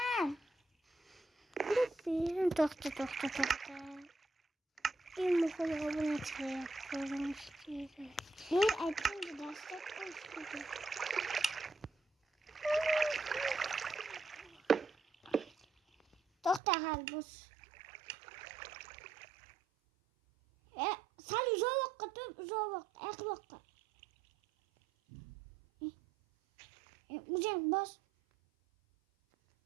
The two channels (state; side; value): drops out; left; at 16.6 s